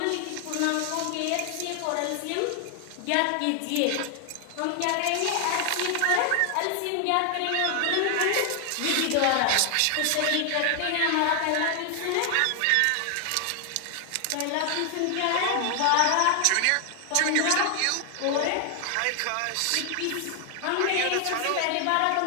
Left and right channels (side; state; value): both; different; correlation 0.00